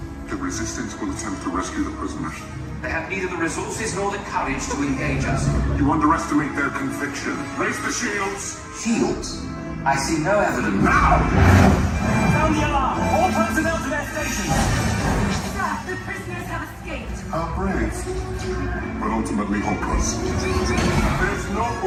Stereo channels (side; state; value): both; identical; correlation 1.00